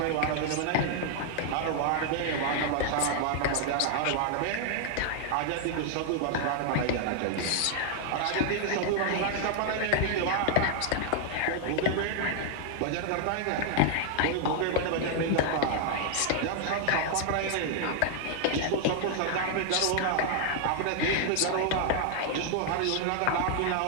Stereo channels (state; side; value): different; both; correlation 0.00